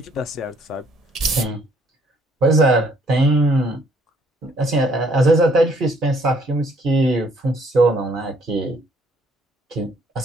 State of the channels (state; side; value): normal; both; correlation 0.64